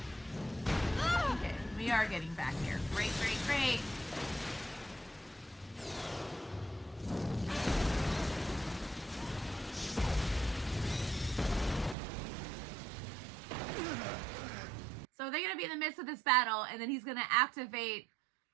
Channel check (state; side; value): drops out; left; at 12.0 s